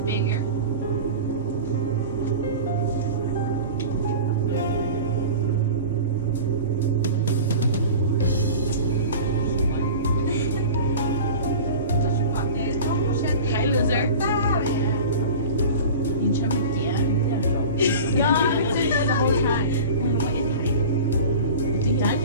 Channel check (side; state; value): both; inverted; correlation -0.36